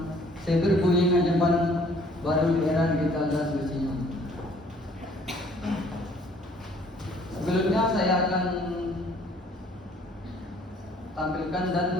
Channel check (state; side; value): normal; both; correlation 0.58